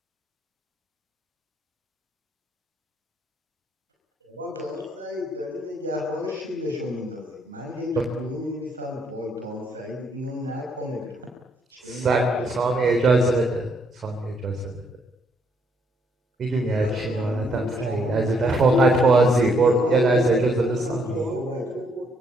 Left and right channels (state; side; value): normal; both; correlation 0.71